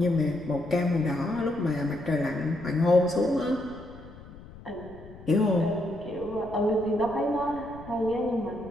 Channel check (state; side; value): noise; left; rumble, 18 dB below the sound